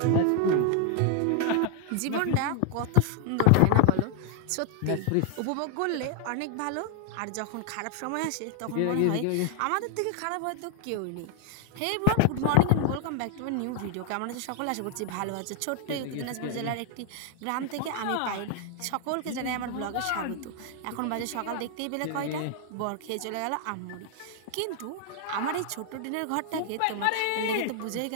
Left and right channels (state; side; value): different; both; correlation 0.00